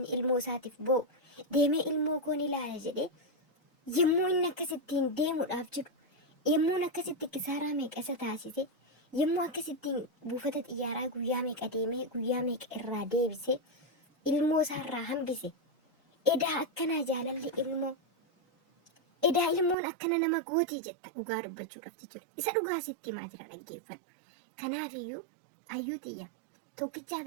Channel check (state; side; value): drops out; left; at 19.8 s